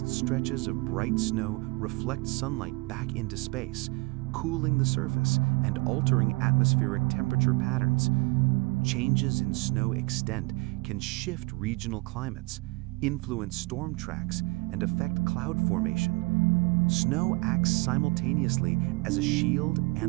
stretches of bright snow reflect sunlight back into space, cooling the surface and altering atmospheric temperature patterns. Changes in snow extent can shift regional climates, influence storm tracks, and affect cloud formation. Snow acts simultaneously as a shield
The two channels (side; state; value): left; quieter; 26.5 dB